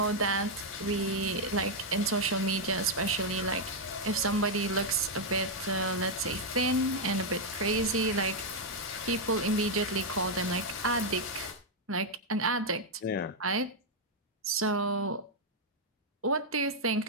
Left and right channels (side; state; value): both; normal; correlation -0.01